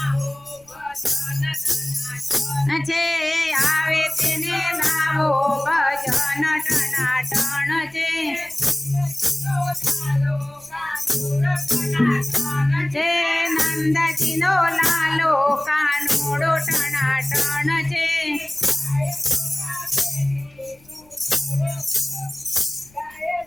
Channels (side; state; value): left; noise; rumble, 30 dB below the sound